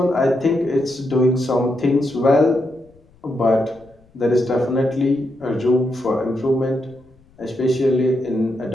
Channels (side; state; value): left; noise; rumble, 30 dB below the sound